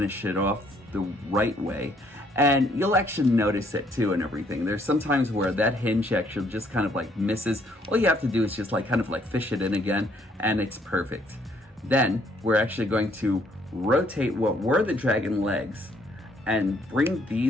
it off the right way. And you'll actually notice it too and everything. There's sometimes where that hinge actually just kind of like misses. All you have to do is just like kind of like fish it in again, and it's perfect. Then we're actually going to rotate what were the dragon legs and bring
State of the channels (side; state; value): both; normal; correlation 0.67